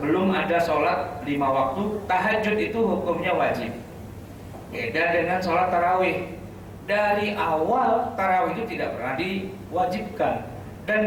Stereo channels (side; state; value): both; identical; correlation 1.00